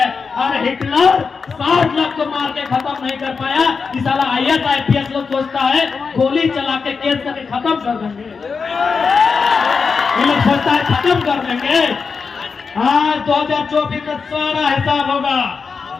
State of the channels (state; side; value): quieter; right; 5.2 dB